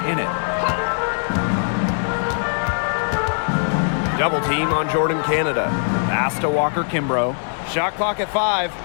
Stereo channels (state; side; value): silent; right; 58 dB below the other